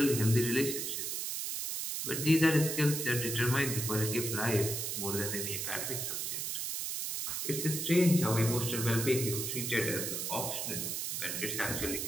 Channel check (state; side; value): noise; right; hiss, 2 dB below the sound